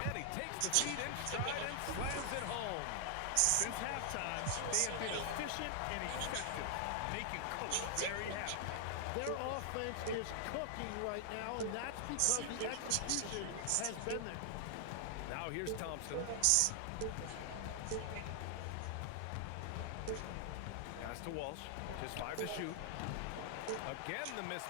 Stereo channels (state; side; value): different; both; correlation 0.00